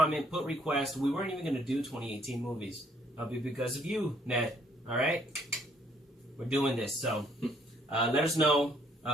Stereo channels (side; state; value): both; normal; correlation 0.66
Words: put requests. We weren't even going to do 2018 movies. It'll be because of you, Ned. All right? We're doing this. So let us know